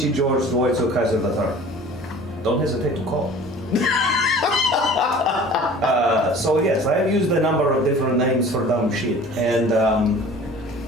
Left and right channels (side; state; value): both; normal; correlation 0.45